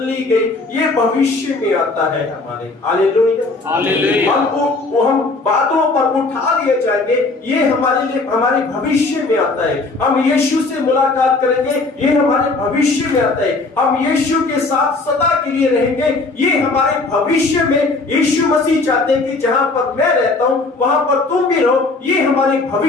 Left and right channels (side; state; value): right; quieter; 3.5 dB